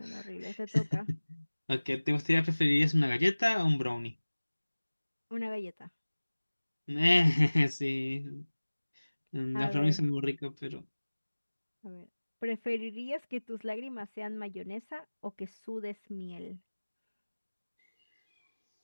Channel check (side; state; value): both; inverted; correlation -1.00